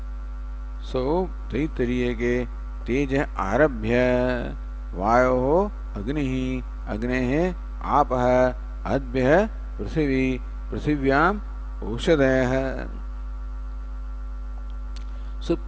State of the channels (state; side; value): identical; both; correlation 1.00